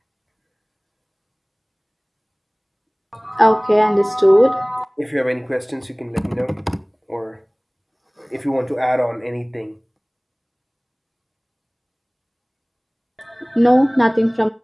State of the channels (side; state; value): both; identical; correlation 1.00